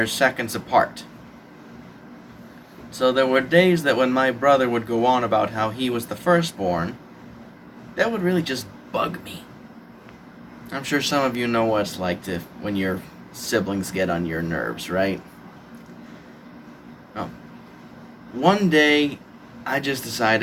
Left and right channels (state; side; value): identical; both; correlation 1.00